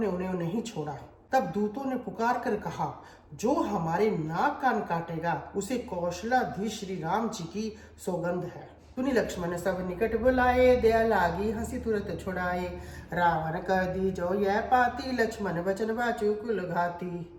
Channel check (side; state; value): both; identical; correlation 1.00